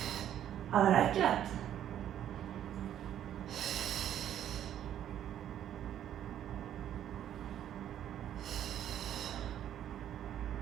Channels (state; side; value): quieter; left; 10.7 dB